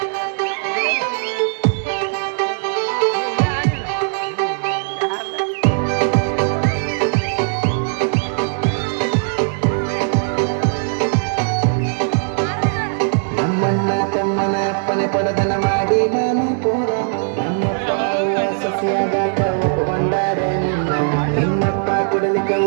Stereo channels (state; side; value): silent; left; 67 dB below the other